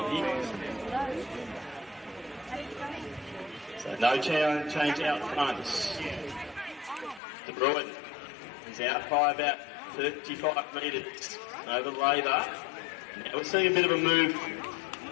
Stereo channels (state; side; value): drops out; right; at 7.2 s